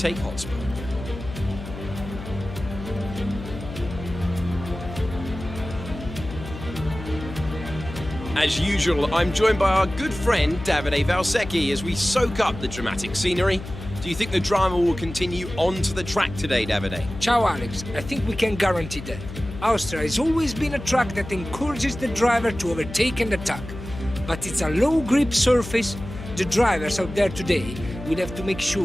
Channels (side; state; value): left; noise; hum, 11 dB below the sound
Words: hotspot. As usual, I'm joined by our good friend Davide Valsecchi as we soak up the dramatic scenery. Do you think the drama will continue onto the track today, Davide? Ciao Alex, I think we can guarantee that. Austria has always been a track that encourages the driver to overtake and attack. But it's a low grip surface. The drivers out there today will have to make